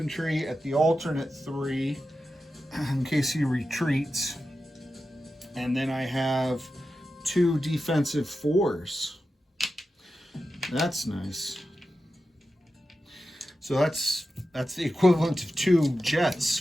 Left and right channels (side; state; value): both; normal; correlation 0.91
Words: at the alternate 3 in case he retreats. And then I have 2 defensive 4s. That's nice. So that's the equivalent of 2 jets